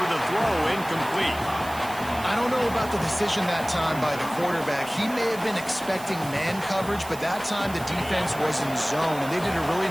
the throw, incomplete. I don't know about the decision that time by the quarterback. He may have been expecting man coverage, but that time the defense was in zone, and they did a really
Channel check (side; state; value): right; noise; hiss, 16 dB below the sound